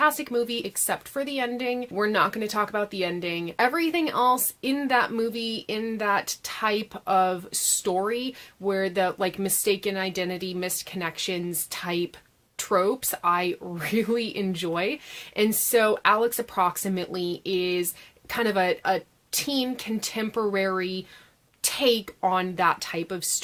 movie except for the ending. We're not going to talk about the ending. Everything else in that movie, in that type of story where the like mistaken identity, missed connections type tropes, I really enjoy. And so Alex Approximately is kind of a teen contemporary take on that type of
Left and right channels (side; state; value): both; identical; correlation 1.00